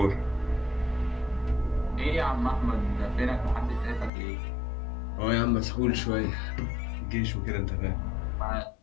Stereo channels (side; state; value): right; drops out; at 4.1 s